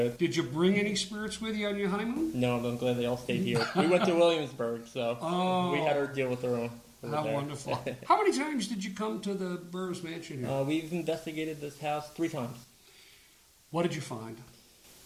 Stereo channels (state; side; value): identical; both; correlation 1.00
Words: Did you bring any spirits with you on your honeymoon? No, I'm glad they all stayed here. We went to Williamsburg, so we had our deal with their own. How wonderful. How many times did you come to the Burrowes Mansion here? We've investigated this house 3 times. What did you find?